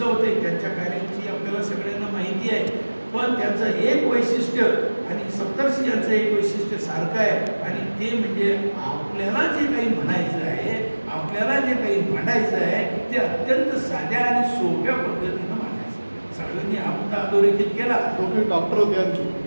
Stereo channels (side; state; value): both; inverted; correlation -1.00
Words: होते, त्यांच्या कार्याची आपल्याला सगळ्यांना माहिती आहे. पण त्यांचं एक वैशिष्ट्य आणि सप्तर्षी यांचं एक वैशिष्ट्य सारखं आहे आणि ते म्हणजे आपल्याला जे काही म्हणायचं आहे, आपल्याला जे काही मांडायचं आहे ते अत्यंत साध्या आणि सोप्या पद्धतीनं मांडायचं. सगळ्यांनी हा मुद्दा अधोरेखित केला. दोघे डॉक्टर होते आणखी,